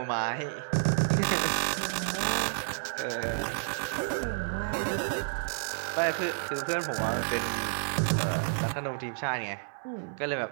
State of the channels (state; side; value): silent; left; digital silence